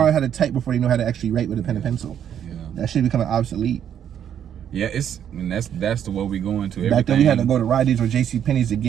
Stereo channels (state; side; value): quieter; left; 9.3 dB